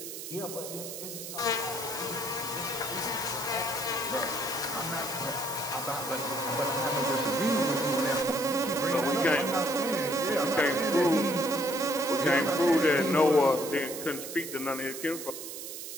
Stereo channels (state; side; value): noise; right; hiss, 9 dB below the sound